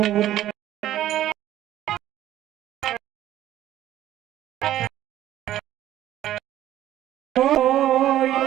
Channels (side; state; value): left; quieter; 13.0 dB